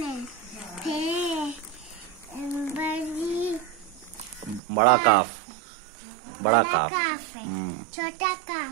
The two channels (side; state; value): left; drops out; at 4.6 s